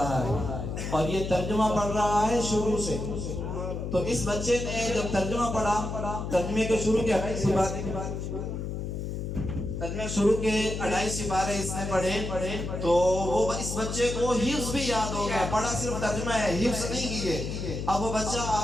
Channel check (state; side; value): noise; left; hum, 4 dB below the sound